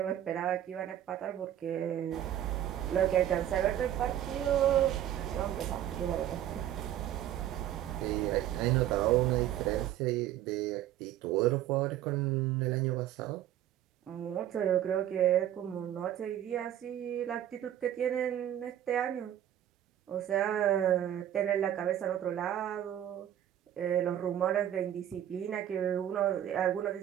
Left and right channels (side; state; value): left; quieter; 11.4 dB